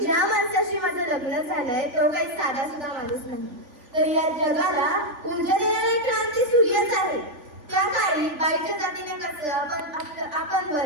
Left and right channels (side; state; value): left; late; 3.5 ms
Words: ज्या माणसाशी माझं लग्न झालंय तो काही साधा सुद्धा माणूस नाही, तर या जगाला ऊर्जा देणारी क्रांती सूर्यच आहे. त्या काळी बाईच्या जातीने कसं आपण